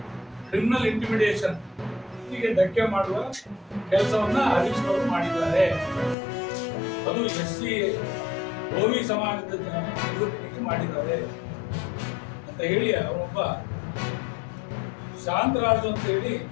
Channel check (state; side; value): drops out; right; at 6.2 s